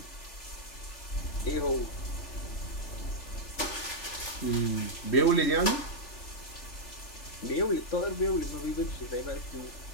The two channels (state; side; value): late; right; 3.4 ms